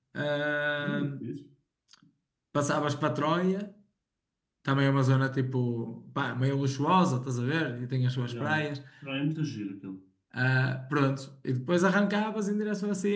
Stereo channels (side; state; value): both; identical; correlation 1.00